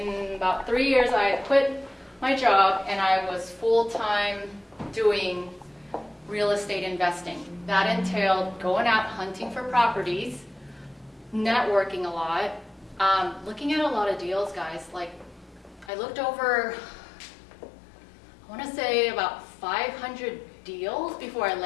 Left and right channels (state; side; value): drops out; right; at 15.9 s